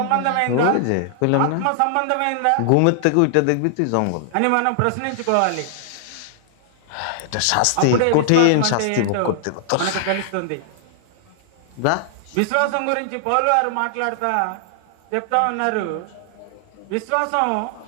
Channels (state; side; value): different; both; correlation -0.01